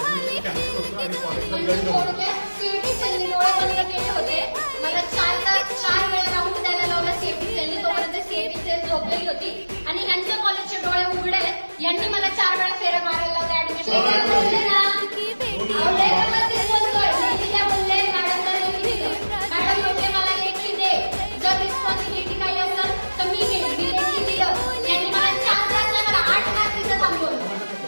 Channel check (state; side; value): inverted; both; correlation -1.00